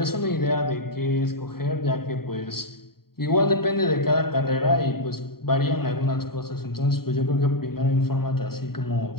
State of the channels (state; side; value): late; right; 0.94 ms